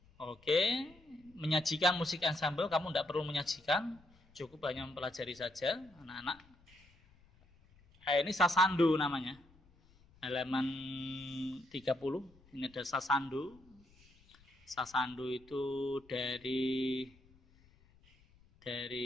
Oke, menyajikan musik ensemble, kamu tidak perlu menyajikan, cukup hanya mempelajari saja, anak-anak. Ini sasandu namanya. Halaman 30, ini ada sasandu. Sasandu itu dari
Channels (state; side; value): noise; left; rumble, 28 dB below the sound